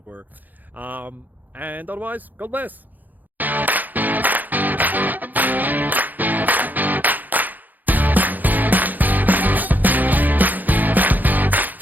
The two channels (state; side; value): late; left; 0.084 ms